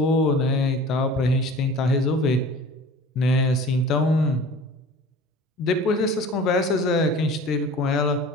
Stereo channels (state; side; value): normal; both; correlation 0.42